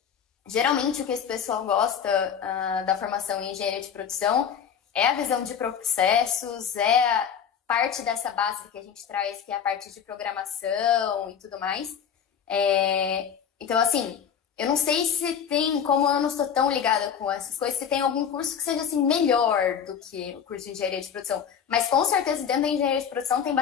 Geralmente, o que esse pessoal gosta da formação em engenharia de produção é a visão de processos, é a parte dessa base que a gente traz, que é a parte de programação e tudo mais. Então, assim, eu não sei se tem, como eu não estou tão ligada com essas coisas, se tem algum curso que seja, assim, melhor do que o curso de engenharia de produção. Mas, com certeza, dentro da engenharia de produção tem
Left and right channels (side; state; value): right; quieter; 7.9 dB